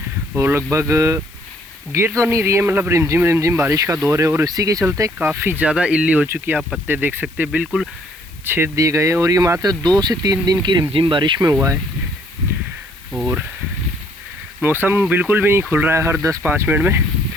और लगभग गिर तो नहीं रही है, मतलब रिमझिम रिमझिम बारिश का दौर है और इसी के चलते काफ़ी ज़्यादा इल्ली हो चुकी है। आप पत्ते देख सकते हैं बिल्कुल छेद दिए गए हैं और ये मात्र 2 से 3 दिन की रिमझिम बारिश में हुआ है और मौसम बिल्कुल भी नहीं खुल रहा है। हर 10-5 मिनट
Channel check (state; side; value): noise; left; hiss, 25 dB below the sound